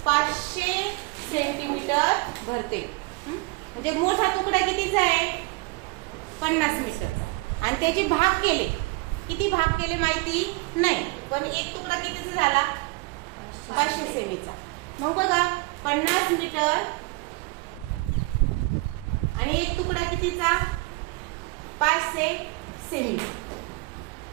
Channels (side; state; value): left; quieter; 25.7 dB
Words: 500 सेंटीमीटर भरते. म्हणजे मोठा तुकडा कितीचा आहे? 50 मीटरचा. आणि त्याचे भाग केले. किती भाग केले माहिती नाही, पण एक तुकडा कितीचा झाला? 500 सेमीचा. मग बघा 50 मीटर आणि एक तुकडा कितीचा? 500 सेमी.